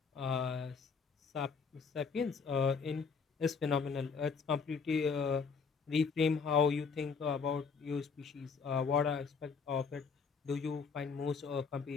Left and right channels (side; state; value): right; quieter; 5.5 dB